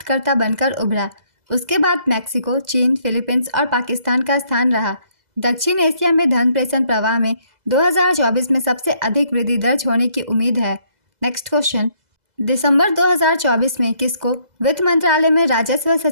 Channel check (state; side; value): late; left; 2.0 ms